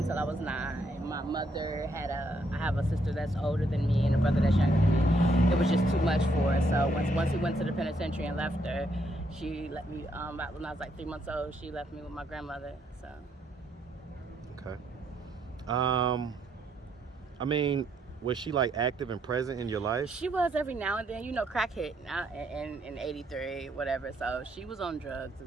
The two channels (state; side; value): normal; both; correlation 0.73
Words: I was 9. My mother I have a sister that's older than me and a brother that's younger than me. It was just too much for her. So once he went to the penitentiary and left her, she let me, about when I was like 3 months old, she left me with my grandmother, so. Okay. I mean, was she like active and present in your life? She was every now and then, you know, crack hit in 83, whatever. So she was on drugs